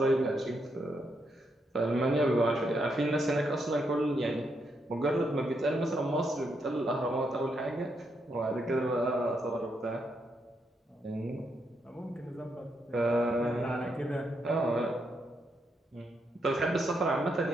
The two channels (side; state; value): both; normal; correlation 0.79